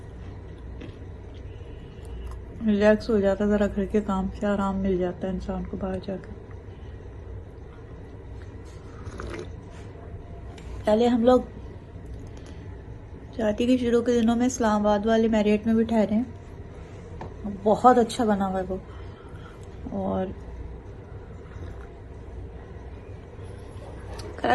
रिलैक्स हो जाता है, जरा घर के काम से आराम मिल जाता है इंसान को बाहर जाकर। पहले हम लोग शादी के शुरू के दिनों में इस्लामाबाद वाले मैरियट में भी ठहरे हैं। बहुत अच्छा बना हुआ है वो। और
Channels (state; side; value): identical; both; correlation 1.00